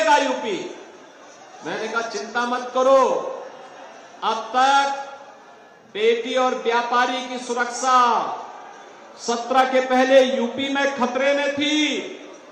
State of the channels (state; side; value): identical; both; correlation 1.00